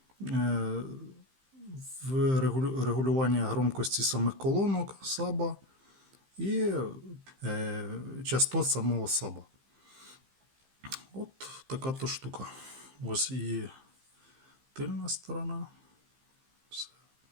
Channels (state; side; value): late; left; 15 ms